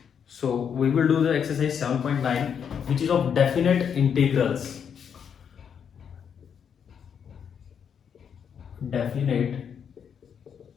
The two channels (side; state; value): right; quieter; 7.6 dB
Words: So we will do the exercise 7.9 which is of definite integrals. Definite